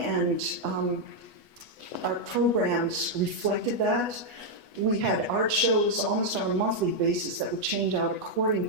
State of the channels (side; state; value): left; late; 8.2 ms